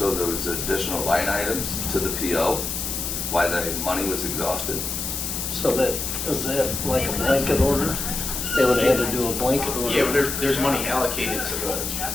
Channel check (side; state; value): left; noise; hiss, 4 dB below the sound